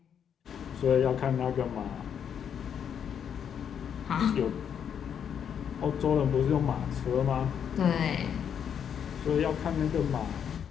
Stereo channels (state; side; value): quieter; right; 8.2 dB